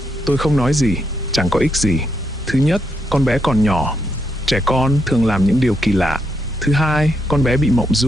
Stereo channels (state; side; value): normal; both; correlation 0.79